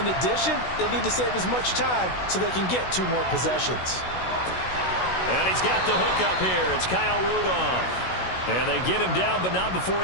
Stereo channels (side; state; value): right; late; 16 ms